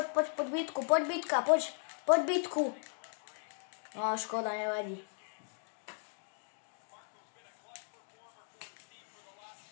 bitku, poď bitka, poď bitku. No škoda, nevadí.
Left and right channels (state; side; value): silent; right; 53 dB below the other